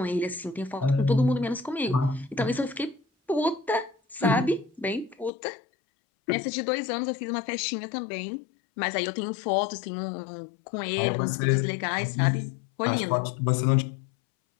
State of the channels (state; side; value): drops out; right; at 5.3 s